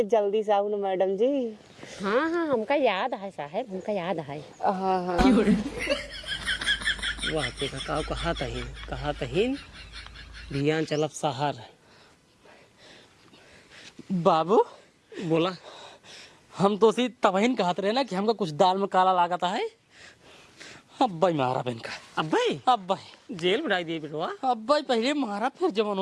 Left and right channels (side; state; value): both; identical; correlation 1.00